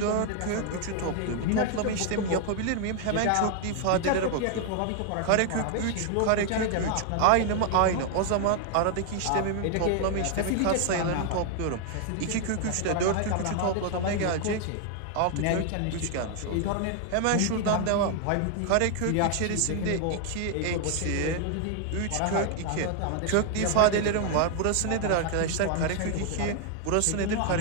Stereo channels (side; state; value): both; different; correlation 0.00